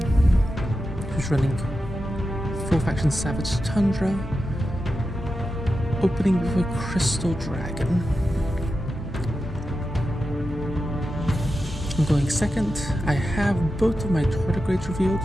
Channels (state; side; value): normal; both; correlation 0.91